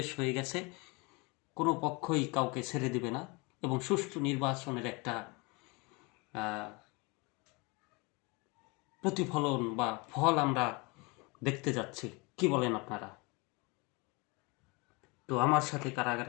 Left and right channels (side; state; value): right; quieter; 27.9 dB